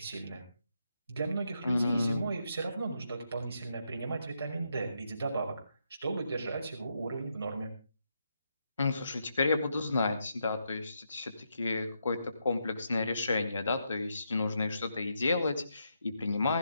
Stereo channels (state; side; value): inverted; both; correlation -0.81